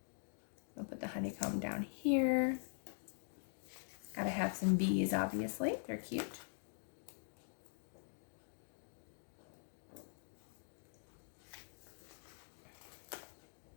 I'll put the honeycomb down here. Gotta have some bees, obviously. They're cute.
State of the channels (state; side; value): silent; right; digital silence